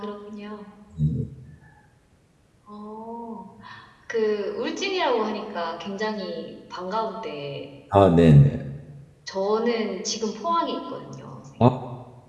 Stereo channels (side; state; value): both; identical; correlation 1.00